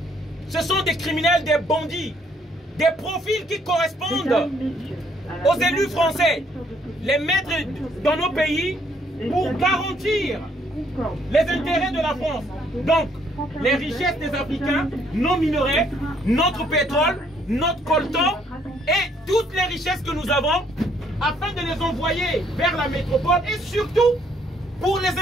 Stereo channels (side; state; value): both; normal; correlation 0.67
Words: ce sont des criminels, des bandits, des profils qui correspondent aux élus français, les mettre dans nos pays pour garantir les intérêts de la France. Donc, les richesses des Africains, nos minerais, notre pétrole, notre coltan et toutes les richesses que nous avons, afin de les envoyer vers la métropole et surtout pour les